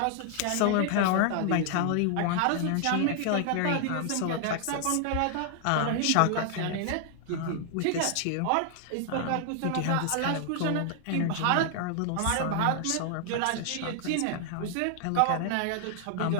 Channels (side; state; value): both; different; correlation 0.00